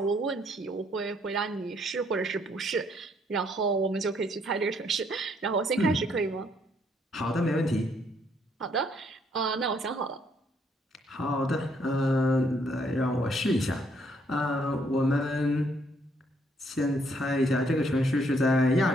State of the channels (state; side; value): normal; both; correlation 0.69